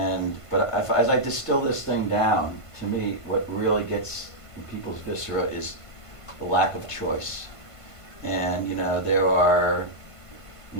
But as I distill this thing down, to me, what really gets in people's viscera is the lack of choice. And there are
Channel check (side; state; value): right; late; 1.5 ms